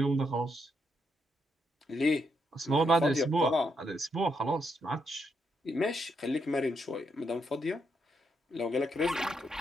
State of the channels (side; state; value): both; normal; correlation 0.78